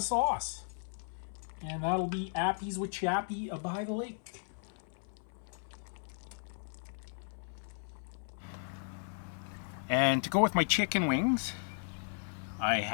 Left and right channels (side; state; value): right; silent; 54 dB below the other